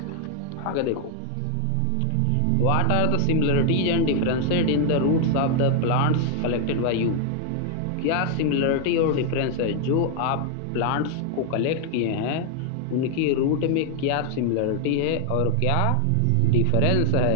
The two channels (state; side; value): different; both; correlation 0.00